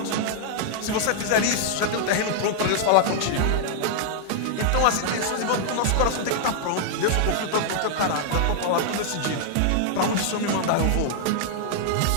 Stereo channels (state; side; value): different; both; correlation -0.01